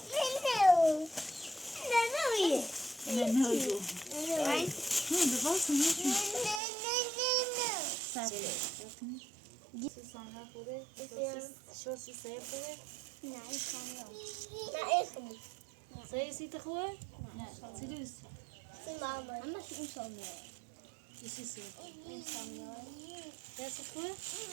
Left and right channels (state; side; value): drops out; left; at 6.6 s